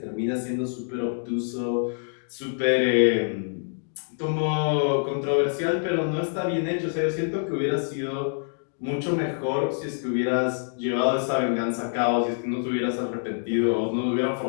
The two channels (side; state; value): right; silent; digital silence